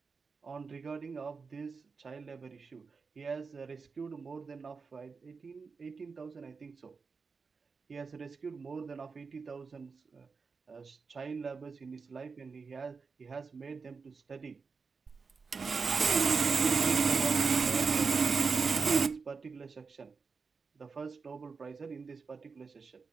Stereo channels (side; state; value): left; quieter; 4.9 dB